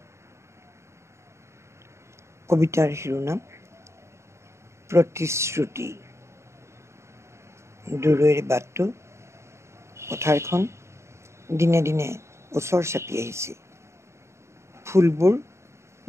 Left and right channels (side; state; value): left; late; 0.13 ms